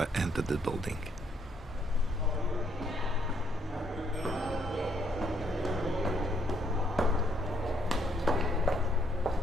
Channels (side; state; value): both; normal; correlation 0.70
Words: entered the building.